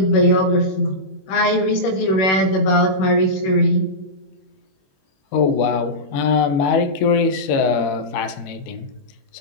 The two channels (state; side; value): late; right; 21 ms